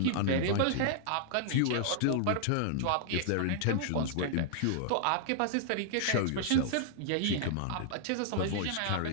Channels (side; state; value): both; different; correlation -0.01